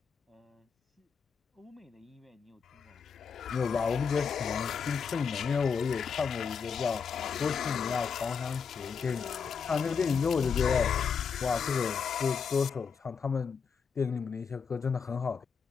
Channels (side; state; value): right; quieter; 6.2 dB